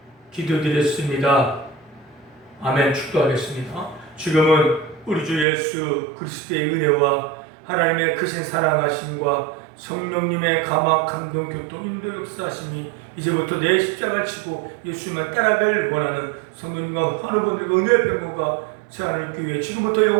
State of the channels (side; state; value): left; drops out; at 5.5 s